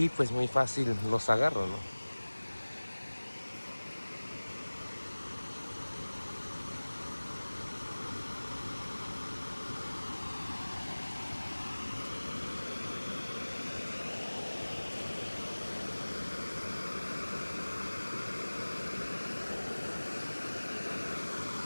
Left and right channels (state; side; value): inverted; both; correlation -1.00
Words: pues muy fácil los agarro, ¿no?